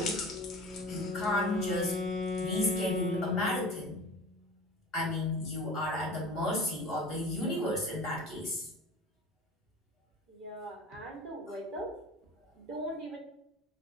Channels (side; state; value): both; normal; correlation 0.38